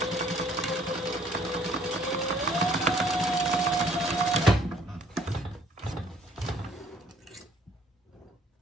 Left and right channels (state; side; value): normal; both; correlation 0.59